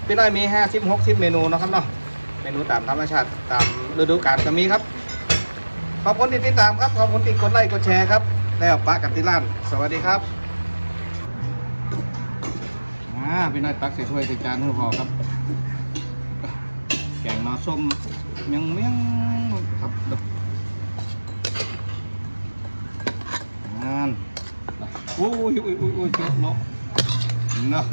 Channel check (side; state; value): both; inverted; correlation -1.00